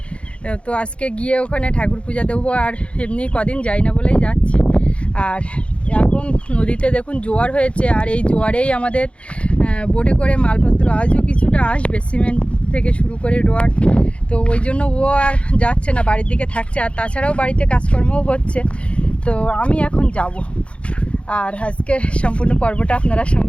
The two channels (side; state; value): right; late; 0.060 ms